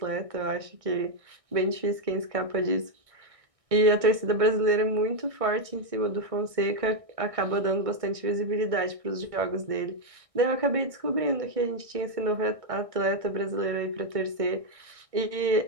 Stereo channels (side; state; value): left; late; 1.6 ms